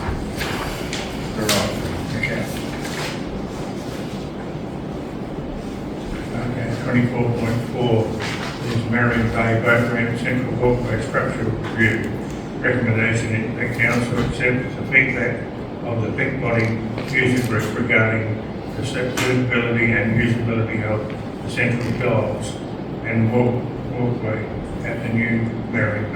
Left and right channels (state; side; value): identical; both; correlation 1.00